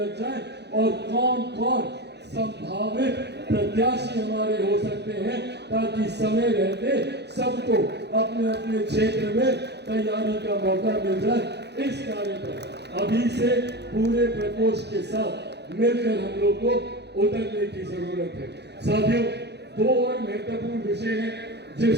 जाएं और कौन कौन संभावित प्रत्याशी हमारे हो सकते हैं, ताकि समय रहते सबको अपने अपने क्षेत्र में तैयारी का मौका मिल जाए। इस कार्य पर अभी से पूरे प्रकोष्ठ के साथ मिलकर हम लोग को उतरने की जरूरत है। साथियों, 2 और महत्वपूर्ण विषय हैं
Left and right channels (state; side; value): late; left; 0.49 ms